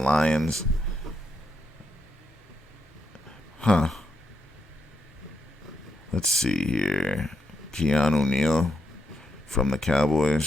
Huh. Let's see here. Keanu Neal from the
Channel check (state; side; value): normal; both; correlation 0.81